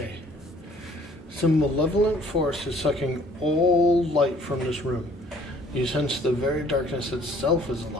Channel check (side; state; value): both; normal; correlation 0.57